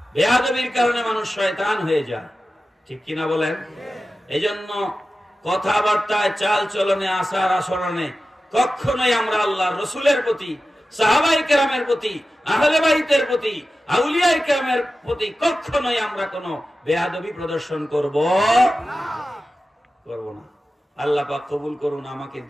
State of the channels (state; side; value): normal; both; correlation 0.94